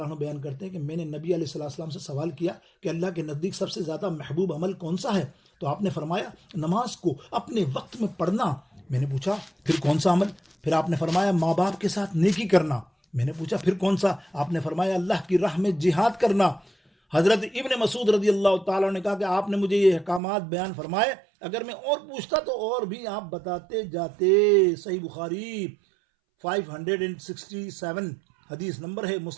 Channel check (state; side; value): drops out; left; at 20.2 s